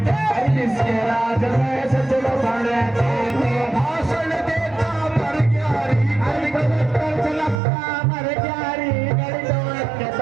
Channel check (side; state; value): left; drops out; at 7.6 s